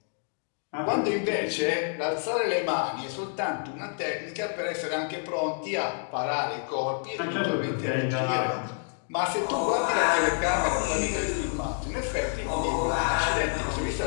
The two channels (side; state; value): right; silent; 59 dB below the other